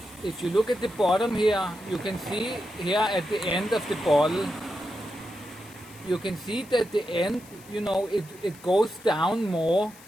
if you look at the bottom here, you can see here at the end of the bottle, you can see that the end, you know, it goes down more,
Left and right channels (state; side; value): noise; left; hiss, 22 dB below the sound